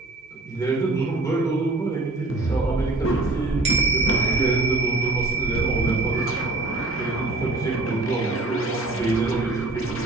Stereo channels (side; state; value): left; quieter; 3.1 dB